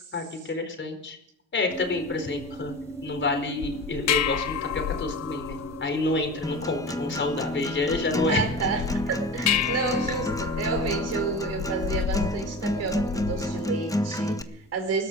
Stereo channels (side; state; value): both; normal; correlation 0.32